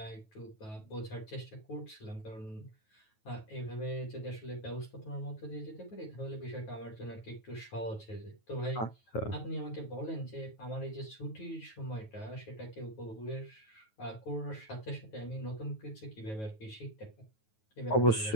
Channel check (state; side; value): late; right; 9.3 ms